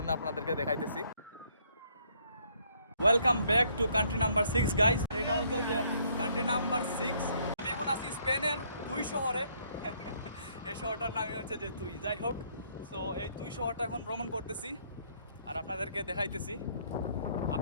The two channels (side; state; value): both; inverted; correlation -0.67